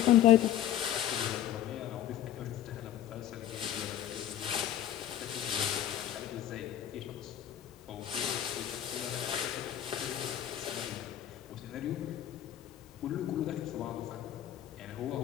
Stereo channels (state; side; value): quieter; right; 11.6 dB